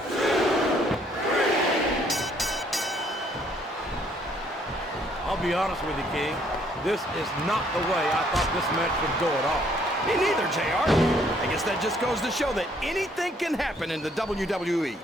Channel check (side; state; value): both; normal; correlation 0.65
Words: 2, 3. I'll be honest with you, King. This is not the way I thought this match would go at all. Me neither, JR. I guess that just goes to show that anything can happen in the WWE.